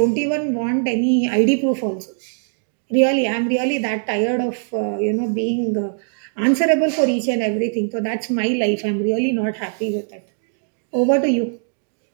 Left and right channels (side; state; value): left; silent; 65 dB below the other